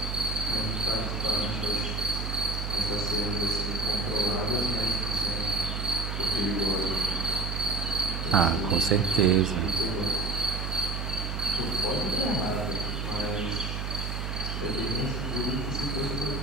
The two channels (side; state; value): right; noise; hum, 3 dB below the sound